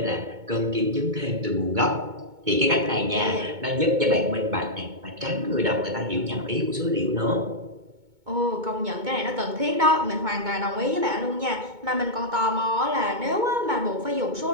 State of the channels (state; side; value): late; left; 2.2 ms